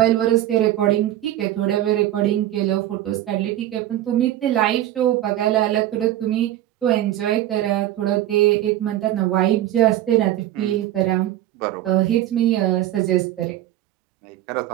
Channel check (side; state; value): left; quieter; 13.3 dB